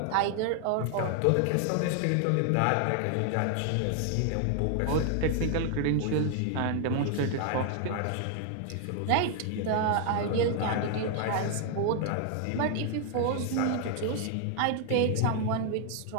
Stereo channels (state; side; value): different; both; correlation 0.00